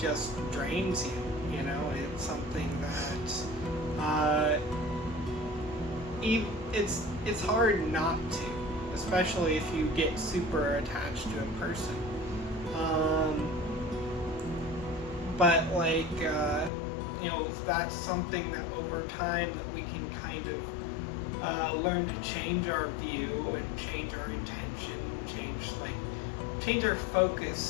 just drains you. It's something that it's hard not to, especially if you get super attached to a person. But, like, that's something that over time that we can kind of learn to change our view and change our intention, change our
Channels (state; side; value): drops out; right; at 16.7 s